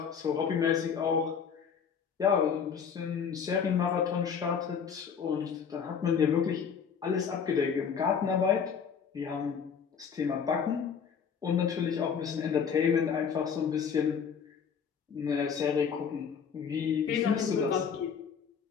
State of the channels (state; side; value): quieter; right; 6.8 dB